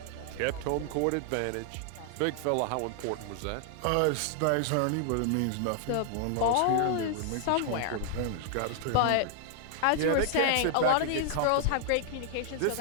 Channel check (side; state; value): both; different; correlation 0.00